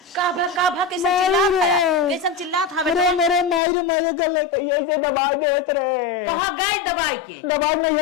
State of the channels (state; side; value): drops out; right; at 3.6 s